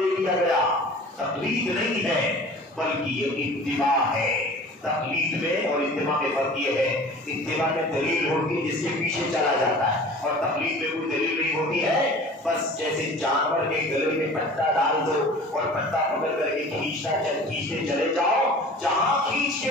دیا گیا؟ تقلید نہیں ہے بلکہ یہ اتباع ہے. تقلید میں اور اتباع میں فرق یہ ہے، اتباع میں دلیل ہوتی ہے جس کے پیچھے چلا جاتا ہے، اور تقلید میں کوئی دلیل نہیں ہوتی ہے. بس جیسے جانور کے گلے میں پٹا ڈال دو اور پٹا پکڑ کر کے کھینچتے چلے جاؤ، جہاں کھینچ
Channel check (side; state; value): both; normal; correlation 0.42